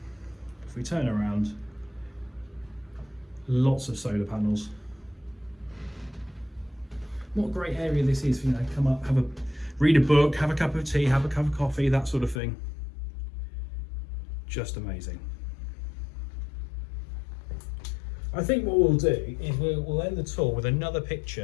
If we turn around, lots of solar panels. What a great area this is for, you know, come up, read a book, have a cup of tea, have a cup of coffee, that sort of thing. Just amazing. I think what we'll do is we'll end the tour with another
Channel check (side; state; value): right; drops out; at 12.4 s